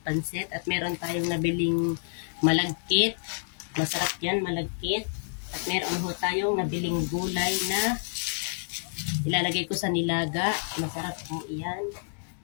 At meron tayong nabiling malagkit. Masarap yan, malagkit. At meron ho tayong nabiling gulay na ilalagay ko sa nilaga. Masarap po iyan.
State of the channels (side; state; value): right; silent; digital silence